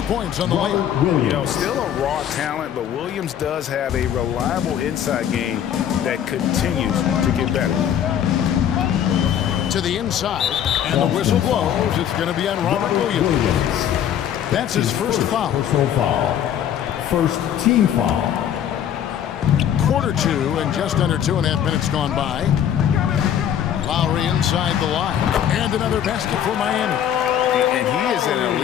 points on the way. You know, still a raw talent, but Williams does have a reliable inside game that continues to get better. To the inside, and the whistle blows. It's going to be on Robert Williams. That's his first foul. Personal foul. First team foul. Quarter 2 and just under 2.5 minutes gone by. Lowry inside the line. And another basket for Miami. And he is an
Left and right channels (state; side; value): quieter; right; 9.8 dB